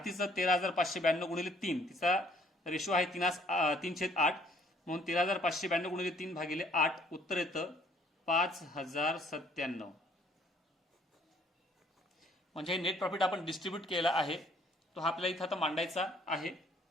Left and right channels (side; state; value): both; normal; correlation 0.62